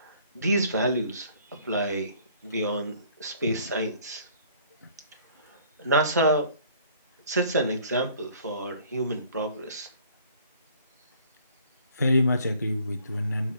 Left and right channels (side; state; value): both; inverted; correlation -0.56